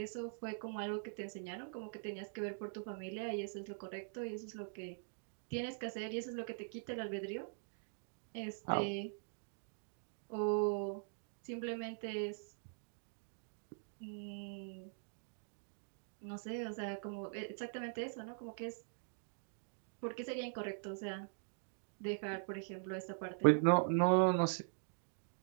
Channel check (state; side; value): silent; left; digital silence